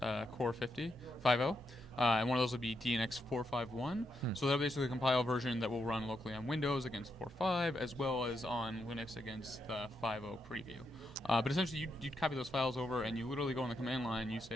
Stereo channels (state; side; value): normal; both; correlation 0.82